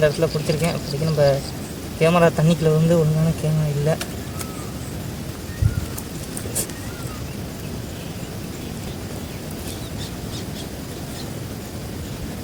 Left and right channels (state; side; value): identical; both; correlation 1.00